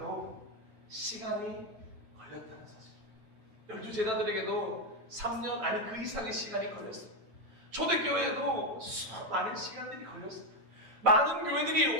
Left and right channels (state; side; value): late; left; 9.0 ms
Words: 시간이 걸렸다는 사실. 12제자들에게도 3년 아니 그 이상의 시간이 걸렸어요. 초대교회에도 많은 시간들이 걸렸습니다. 많은